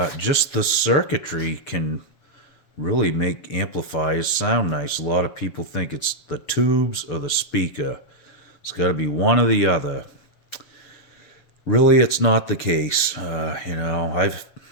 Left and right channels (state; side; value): late; right; 7.2 ms